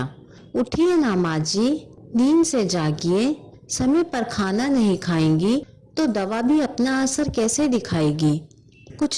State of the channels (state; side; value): identical; both; correlation 1.00